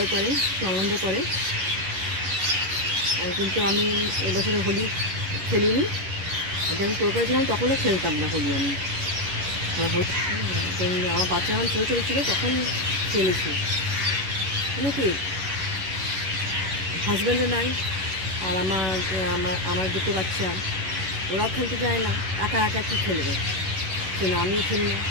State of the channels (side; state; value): left; late; 11 ms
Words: করে, একটু আনন্দ করে। আর কিন্তু আমি এবছরে হোলি খেলিনি। যখন কলকাতা ছিলাম তখনও খেলতাম না হোলি। আমি আমার বাচ্চা যখন ছোটো ছোটো ছিল তখন খেলেছি। মানে কি, হাজব্যান্ডও নাই, আর আমার দুটো বাচ্চা, ওরাও খেলতে যায় না, একা একা কী খেলবে, সেই না আমিও খেলি না।